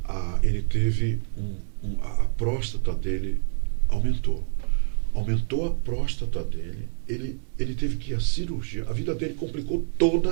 Ele teve a próstata dele aumentou a próstata dele, ele teve que ir à cirurgia, a vida dele complicou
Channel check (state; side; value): silent; left; 61 dB below the other